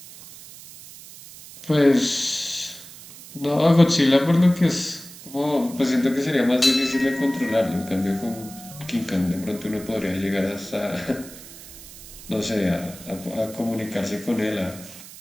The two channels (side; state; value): right; noise; hiss, 17 dB below the sound